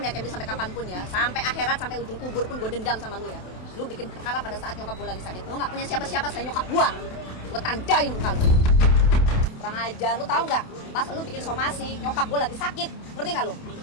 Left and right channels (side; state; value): right; late; 28 ms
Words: Kemi sampai kapanpun ya. Sampai akhirat, sampai ujung kubur pun gue dendam sama lu ya. Lu bikin perkara pada saat nyokap gue lagi sakit. Lu nggak punya siapa-siapa selain nyokap gue. Gue tandain muka lu. Kurang ajar, lu tahu nggak? Pas lu bikin somasi, nyokap gue lagi sakit. Ngerti nggak lu?